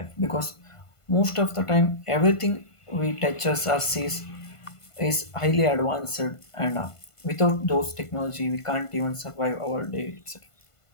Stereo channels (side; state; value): right; late; 1.5 ms